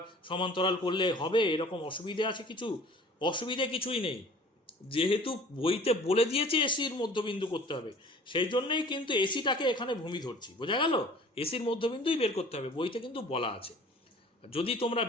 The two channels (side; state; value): both; normal; correlation 0.48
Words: সমান্তরাল করলে হবে, এরকম অসুবিধে আছে কিছু? অসুবিধে কিছুই নেই, যেহেতু বইতে বলে দিয়েছে এসির মধ্যবিন্দু করতে হবে, সেই জন্যই কিন্তু এসিটাকে এখানে ভূমি ধরছি। বোঝা গেল? এসির মধ্যবিন্দুই বের করতে হবে, বইতে কিন্তু বলা আছে। যদি তোমরা